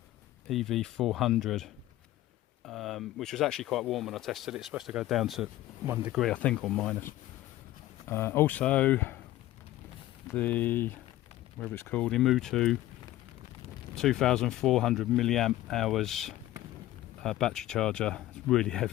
EV400, which was actually quite warm when I tested it. It's supposed to go down to 1 degree I think, or minus. Also the, whatever it's called, Imutu 2400 milliamp hours battery charger. It's really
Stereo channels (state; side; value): quieter; right; 15.1 dB